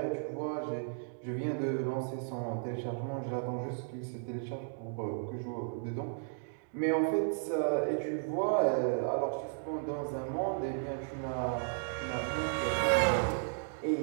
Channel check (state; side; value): silent; left; digital silence